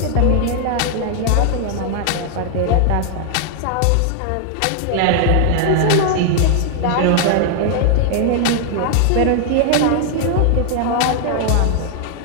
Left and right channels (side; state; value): both; different; correlation 0.00